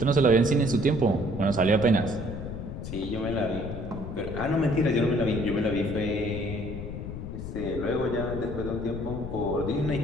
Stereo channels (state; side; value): noise; left; rumble, 7 dB below the sound